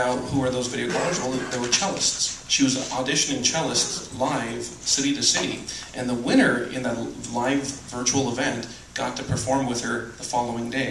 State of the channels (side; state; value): both; identical; correlation 1.00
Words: who are those video callers? Well, they were cellists. She was auditioning cellists live, city to city, and the winner in that live virtual event got to perform with her the following